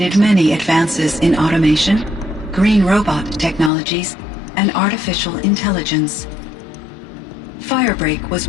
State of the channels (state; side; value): drops out; right; at 3.7 s